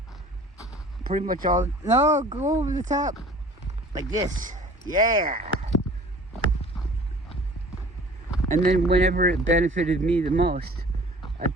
Pretty much all. No, go over the top. Like this. Yeah. And then whenever it benefited me the most,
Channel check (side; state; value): both; normal; correlation 0.47